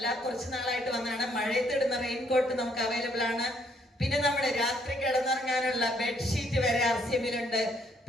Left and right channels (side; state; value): both; normal; correlation 0.69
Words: കുറച്ച് നാളായിട്ട് വന്നതാണ്, മഴയത്തിടുന്ന റെയിൻകോട്ട് നമുക്ക് അവൈലബിൾ ആണ്. പിന്നെ നമ്മുടെ രാത്രി കിടന്നുറങ്ങാനുള്ള ബെഡ്ഷീറ്റ് വരെ ആർസിഎമ്മിലുണ്ട്.